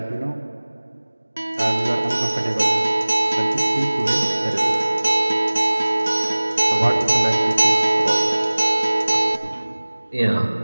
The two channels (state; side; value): inverted; both; correlation -1.00